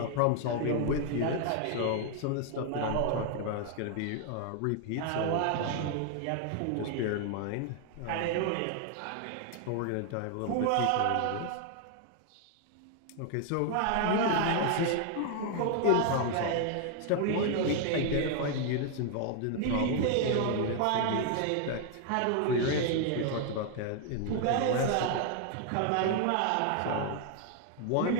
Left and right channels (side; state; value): both; different; correlation 0.00